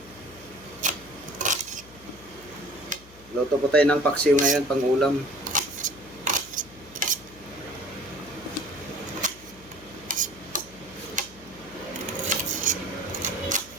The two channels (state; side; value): noise; left; hum, 21 dB below the sound